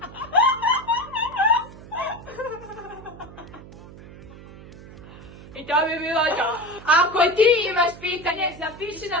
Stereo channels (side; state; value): right; noise; hum, 17 dB below the sound